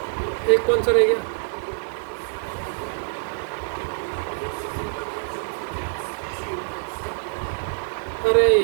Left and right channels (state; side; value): silent; left; 62 dB below the other